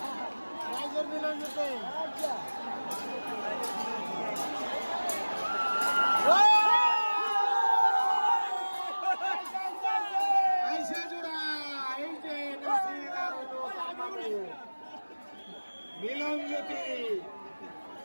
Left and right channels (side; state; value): both; inverted; correlation -1.00